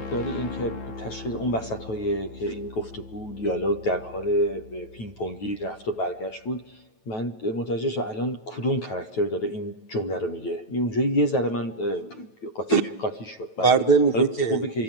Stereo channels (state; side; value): late; right; 9.2 ms